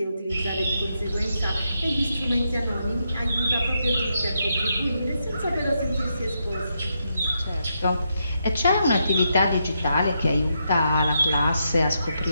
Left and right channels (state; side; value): inverted; both; correlation -0.81